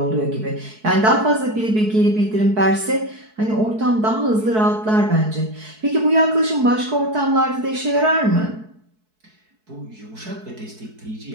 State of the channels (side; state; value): left; late; 4.6 ms